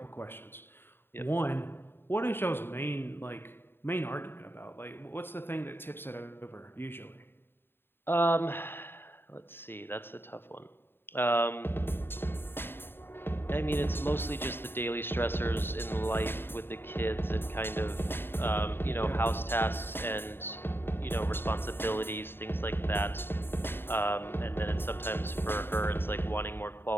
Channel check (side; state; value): right; late; 0.11 ms